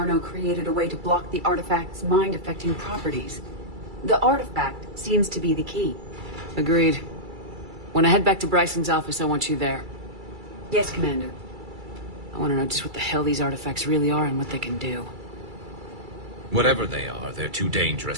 created a way to block the artifact's mind-affecting properties. The artifact seems to be the key. Agreed. When I head back to Bryson's office, I want you there. Yes, Commander. I want to know just what the hell these artifacts really are and what they can do. Whatever they are, they're too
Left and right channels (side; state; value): left; late; 2.3 ms